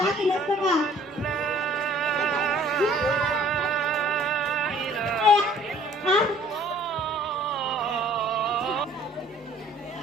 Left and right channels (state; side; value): normal; both; correlation 0.55